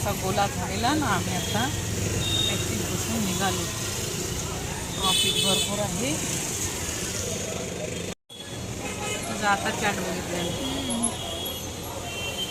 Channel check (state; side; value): identical; both; correlation 1.00